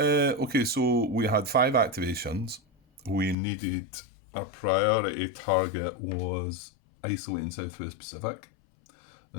so we had 5 activations. We needed, our priority target was isolating Southwest Pacific.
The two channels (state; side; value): drops out; right; at 3.4 s